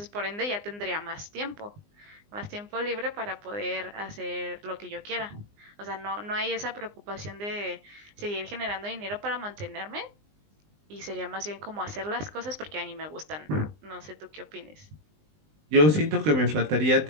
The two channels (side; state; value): left; late; 20 ms